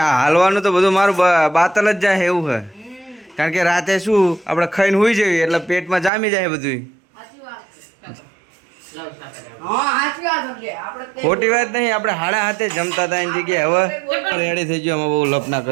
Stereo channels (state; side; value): drops out; left; at 6.1 s